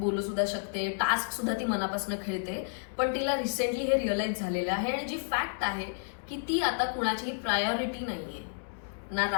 सुद्धा शकते, टास्क सुद्धा ती मनापासून खेळते. पण तिला रिसेंटली हे रिअलाइज झालेलं आहे आणि जी फॅक्ट आहे की ती आता कुणाचीही प्रायोरिटी नाहीये. ना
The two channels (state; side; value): silent; right; 57 dB below the other